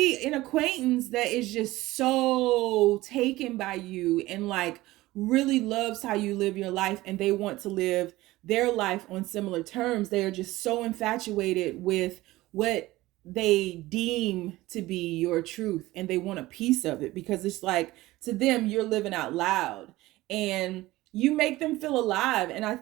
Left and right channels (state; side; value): quieter; left; 18.1 dB